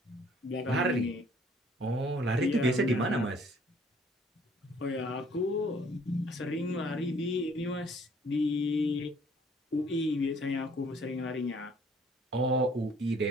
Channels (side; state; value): both; normal; correlation 0.59